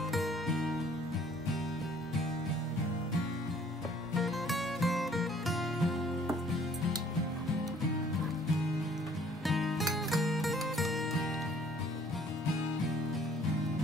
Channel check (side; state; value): right; noise; hum, 26 dB below the sound